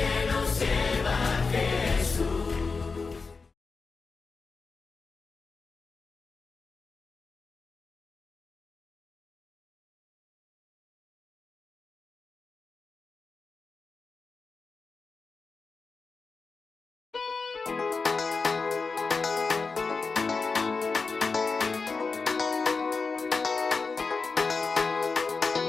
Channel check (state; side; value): quieter; right; 4.5 dB